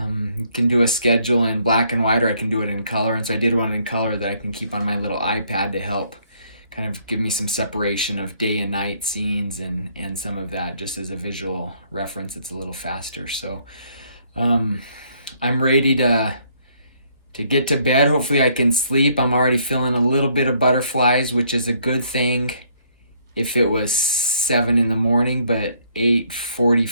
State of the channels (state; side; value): inverted; both; correlation -0.66